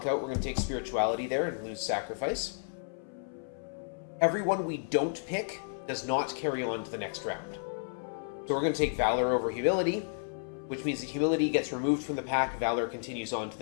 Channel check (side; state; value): right; silent; 56 dB below the other